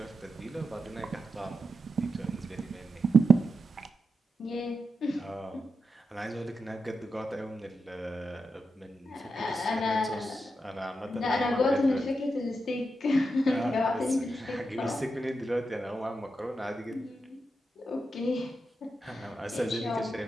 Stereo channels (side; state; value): both; normal; correlation 0.87